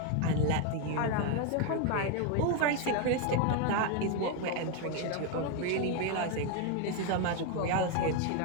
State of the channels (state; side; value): different; both; correlation 0.01